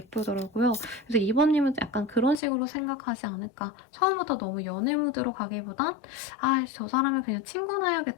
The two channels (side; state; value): right; drops out; at 2.4 s